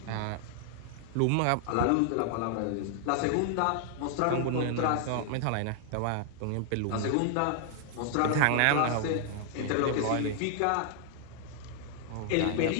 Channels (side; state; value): both; different; correlation 0.00